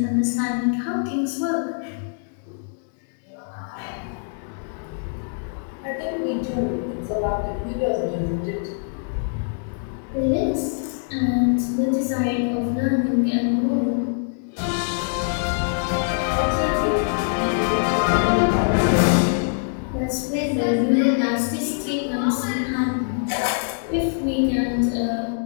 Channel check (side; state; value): right; silent; digital silence